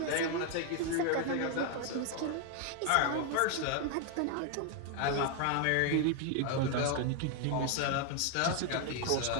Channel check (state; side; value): different; both; correlation 0.01